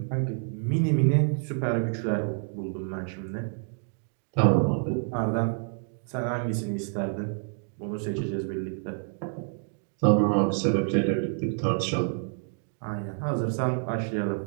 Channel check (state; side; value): silent; left; 59 dB below the other